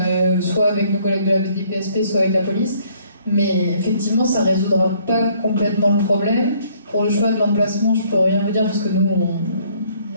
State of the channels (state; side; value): inverted; both; correlation -0.63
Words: soit avec nos collègues de la DPSP, soit avec la police. Mais effectivement, ça ne résoudra pas complètement le problème. Pour le choix de l'emplacement, je ne peux rien vous dire parce que nous,